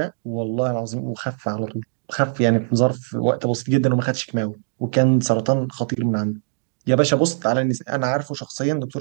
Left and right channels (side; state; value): left; silent; digital silence